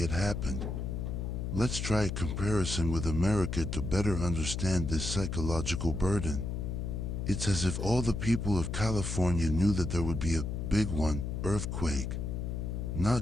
happened. Let's try a comparison with America to better understand this psychological burden. It's as if all the people of California knew that there would be a big one, earthquake.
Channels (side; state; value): left; noise; hum, 3 dB below the sound